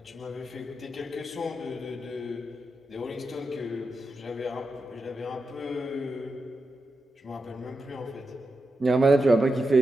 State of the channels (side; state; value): both; normal; correlation 0.88